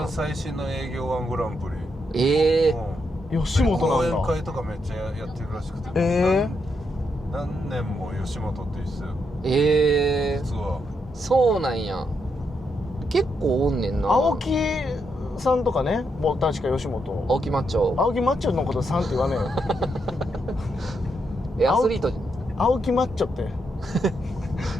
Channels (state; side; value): normal; both; correlation 0.80